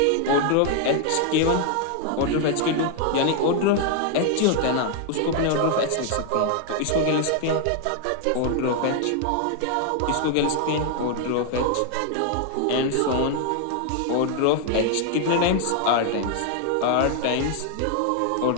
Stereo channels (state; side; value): different; both; correlation 0.00